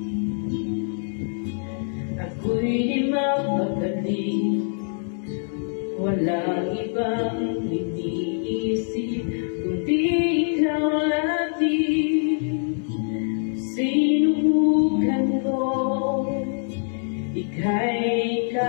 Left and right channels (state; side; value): silent; right; digital silence